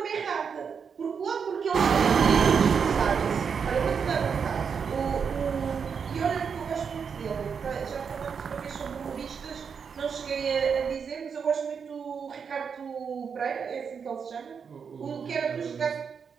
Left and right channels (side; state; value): left; quieter; 6.4 dB